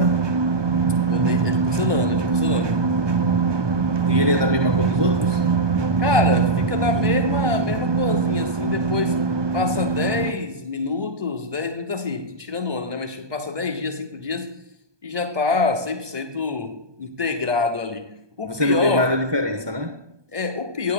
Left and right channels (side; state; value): left; late; 1.2 ms